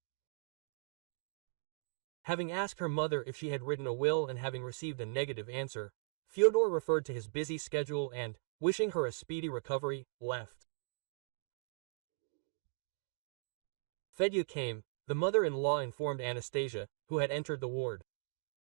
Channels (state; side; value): silent; left; digital silence